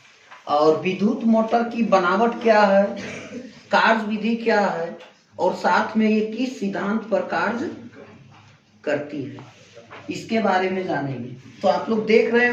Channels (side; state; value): both; identical; correlation 1.00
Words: और विद्युत मोटर की बनावट क्या है, कार्य विधि क्या है और साथ में ये किस सिद्धांत पर कार्य करती है, इसके बारे में जानेंगे। तो आप लोग देख रहे